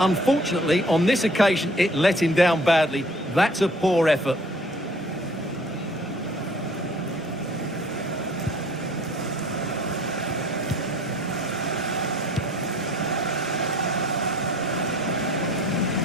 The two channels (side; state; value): both; normal; correlation 0.53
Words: on this occasion, it let him down badly. That's a poor effort.